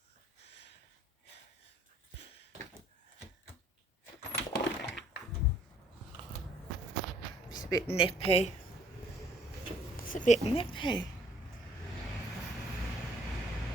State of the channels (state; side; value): normal; both; correlation 0.61